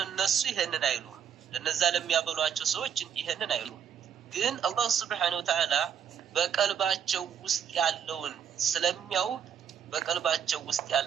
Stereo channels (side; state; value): left; quieter; 8.4 dB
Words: እነሱ ይሄንን አይሉም። ለነዛ ለሚያበሏቸው ሰዎች ይሄንን አይሉም። ግን አላህ Subhanahu Wa Ta'ala በቀልባቸው ውስጥ ያለውን ስለሚያውቅ በቀልባቸው ውስጥ